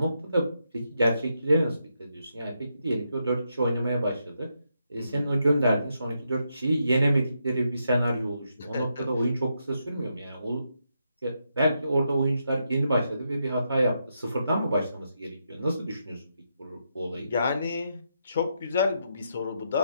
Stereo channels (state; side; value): inverted; both; correlation -0.82